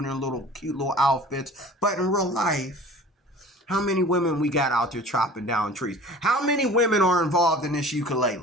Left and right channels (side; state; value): both; normal; correlation 0.43